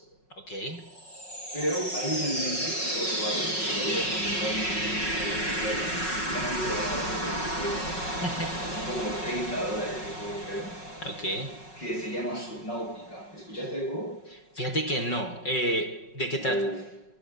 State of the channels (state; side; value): late; right; 5.4 ms